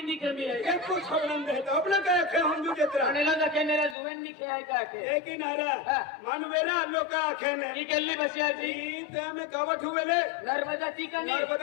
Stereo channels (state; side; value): drops out; right; at 4.0 s